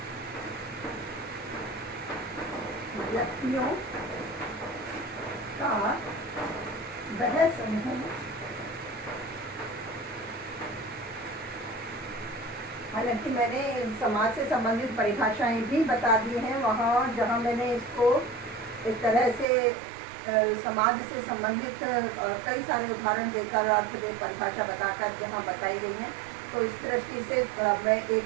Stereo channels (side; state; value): left; drops out; at 19.5 s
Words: व्यक्तियों का वह समूह। हालांकि मैंने समाज से संबंधित परिभाषाएं भी बता दी हैं वहाँ जहाँ मैंने इसको एक तरह से समाज से संबंधित कई सारे उदाहरण देकर अर्थ में परिभाषा बताकर जहाँ बताई गई है। तो इस दृष्टि से मैं